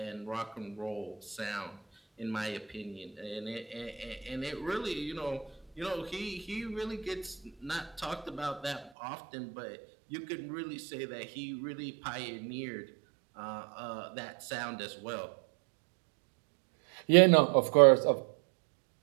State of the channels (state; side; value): drops out; left; at 8.9 s